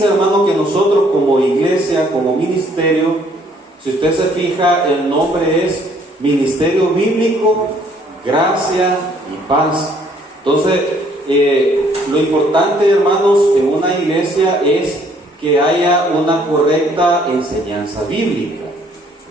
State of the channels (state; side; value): normal; both; correlation 0.63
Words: hermano, que nosotros como iglesia, como ministerio, si usted se fija, el nombre es Ministerio Bíblico, Gracia y Paz. Entonces, lo importante, hermanos, en una iglesia es que haya una correcta enseñanza bíblica.